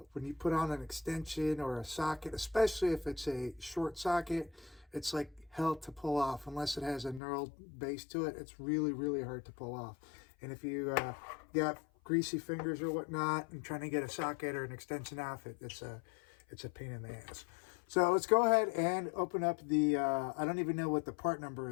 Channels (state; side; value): drops out; right; at 7.2 s